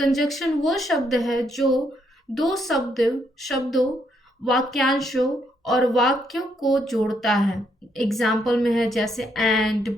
वो शब्द है जो दो शब्दों, वाक्यांशों और वाक्यों को जोड़ता है। एग्जाम्पल में है जैसे एंड,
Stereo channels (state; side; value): normal; both; correlation 0.74